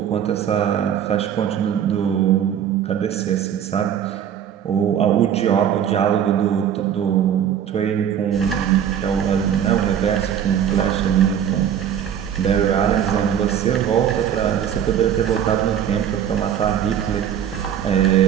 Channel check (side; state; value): left; quieter; 9.3 dB